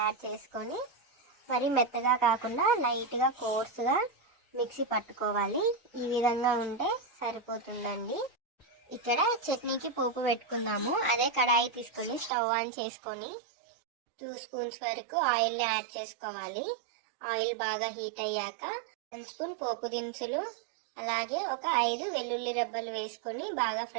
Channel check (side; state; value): left; drops out; at 12.3 s